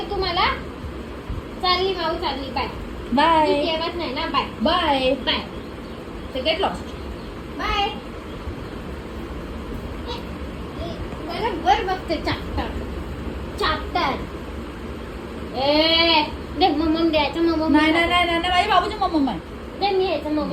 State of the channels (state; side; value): identical; both; correlation 1.00